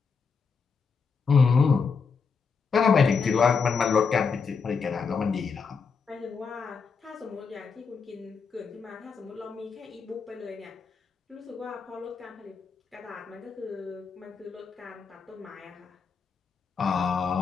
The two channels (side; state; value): right; quieter; 5.4 dB